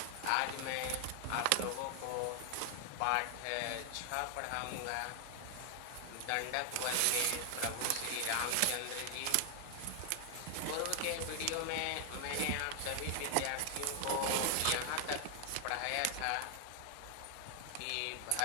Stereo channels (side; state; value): both; different; correlation 0.00